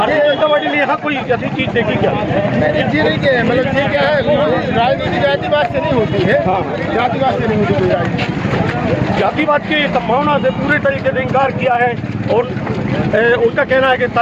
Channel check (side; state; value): both; identical; correlation 1.00